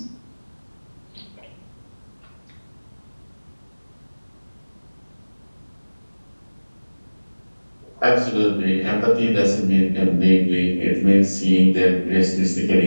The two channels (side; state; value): both; inverted; correlation -1.00